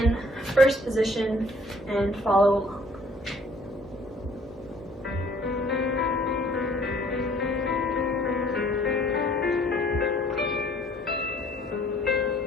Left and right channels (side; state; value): both; normal; correlation 0.58